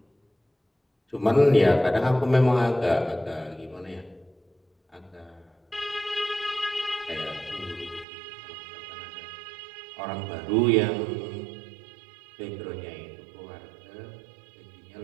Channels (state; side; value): drops out; left; at 8.1 s